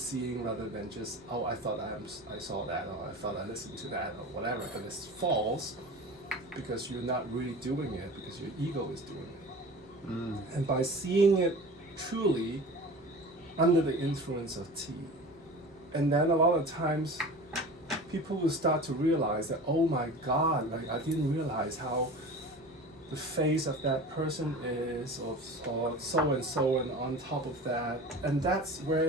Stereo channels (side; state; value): both; normal; correlation 0.36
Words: rather than just, oh, I thought I saw that, or I thought I listened to that, or whatever, and it's false because you're not really doing it, because your ego is doing it. And by seeing it truly under the influence of tea, and then a lot of times people will start to realize that, oh my God, like I didn't realize how the face of that person is, or so and so, and on top of that. And that's